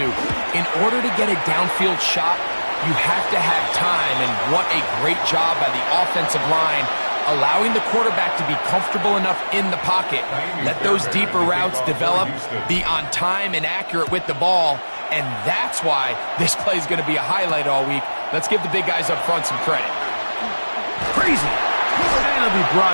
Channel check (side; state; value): both; inverted; correlation -1.00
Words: in order to get a downfield shot, you have to have time. And what a great job by the offensive line, allowing the quarterback to be comfortable enough in the pocket, let those deeper routes develop, be on time and accurate with the ball, and that's why this play is going to be a highlight all week. Let's give the big guys up front some credit. Crazy. And he'll be